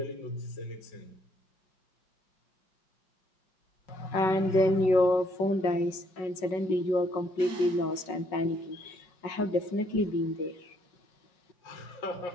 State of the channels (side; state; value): right; late; 5.4 ms